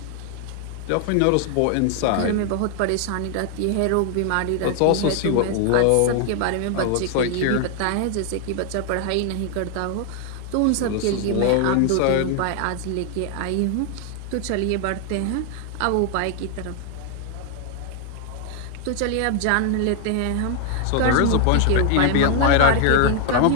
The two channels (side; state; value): both; different; correlation 0.00